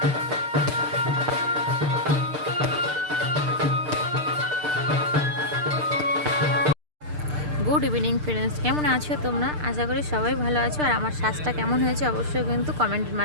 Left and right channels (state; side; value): late; left; 6.7 ms